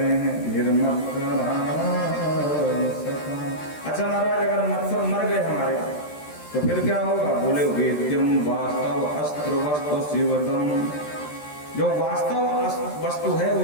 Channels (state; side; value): late; right; 13 ms